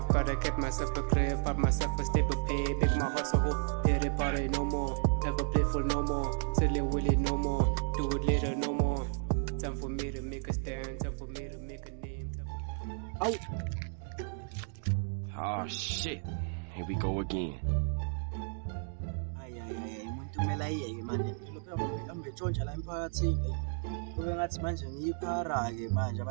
gotta get myself a crib, pop myself a stable pay, make my heart so whole. Pity party no more, ever playful no more, silly willy no more, do it later no more. Time for me to make a stand, time for me to make a name. Out. Oh shit, here we go again. Umuntu kumele ayeke manje lokho ambetshontsha la emphakathini kube ngathi manje ngiyiphara-ke manje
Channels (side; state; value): left; silent; digital silence